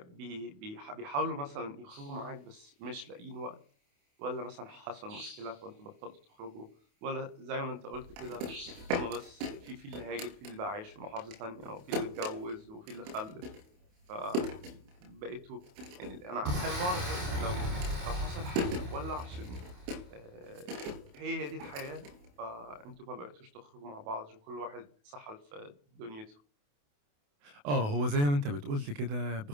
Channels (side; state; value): left; late; 28 ms